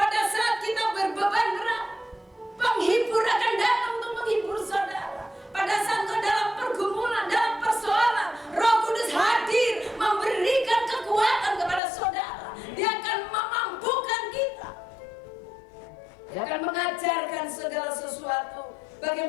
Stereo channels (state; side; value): drops out; right; at 11.8 s